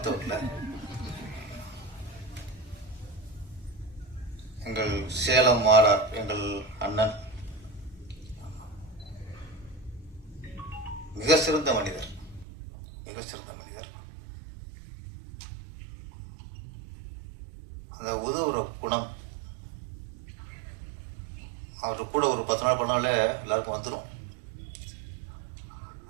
வரல. எங்கள் சேலம் மாறார் எங்கள் அண்ணன் மிக சிறந்த மனிதர், மிக சிறந்த மனிதர். அந்த உதவுற குணம் அவரு கூட ஒரு 10 நாள் பண்ணாலே எல்லாருக்கும் வந்துடும்.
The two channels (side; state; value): left; drops out; at 12.5 s